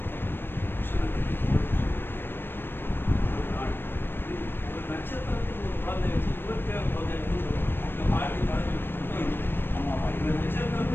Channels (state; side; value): late; right; 0.099 ms